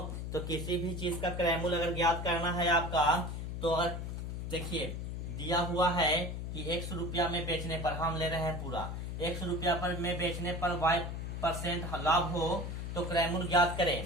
तो किसी भी चीज का क्रय मूल्य अगर ज्ञात करना है आपका, तो अगर देखिए दिया हुआ है कि 100 रुपया में बेचने पर, हम ले रहे हैं पूरा 100 रुपया पर में बेचने पर y% लाभ हो तो क्रय मूल्य ज्ञात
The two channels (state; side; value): noise; left; hum, 5 dB below the sound